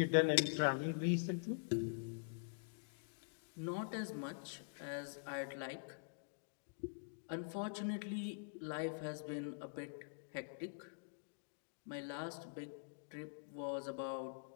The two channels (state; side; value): silent; right; digital silence